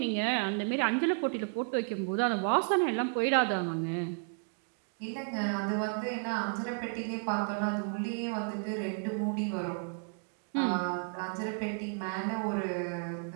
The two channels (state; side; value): quieter; left; 38.3 dB